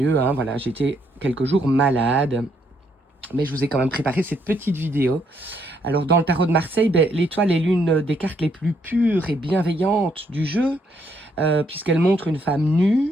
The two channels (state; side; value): normal; both; correlation 0.72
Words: hein, voilà, j'étais quelques jours malade. Mais je vous ai quand même préparé cette petite vidéo. Alors, dans le tarot de Marseille, l'étoile est l'une des cartes les plus pures et bienveillantes du jeu, puisqu'elle montre une femme